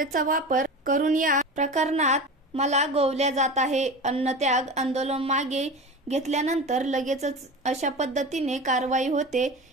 वापर करून या प्रकरणात मला गोवल्या जात आहे. अन्नत्याग आंदोलन मागे घेतल्यानंतर लगेचच अशा पद्धतीने कारवाई होते,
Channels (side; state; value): both; normal; correlation 0.31